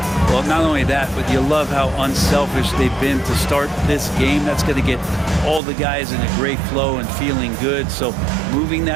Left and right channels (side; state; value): left; drops out; at 5.6 s